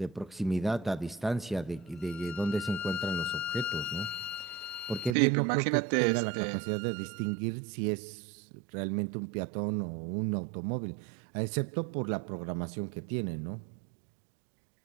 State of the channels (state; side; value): drops out; left; at 5.2 s